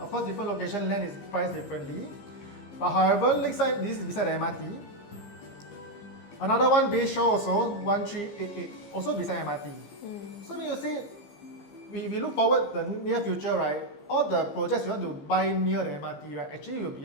course, different location land is priced differently. But however, Lakeside, this is beside the MRT. Another one, Bayshore also, 1388, also beside MRT. So when you say, if you look forward the near future, right, all the projects you want to buy near the MRT, right, actually will be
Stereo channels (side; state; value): right; late; 15 ms